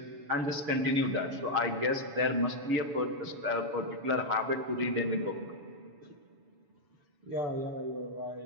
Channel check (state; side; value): late; left; 7.1 ms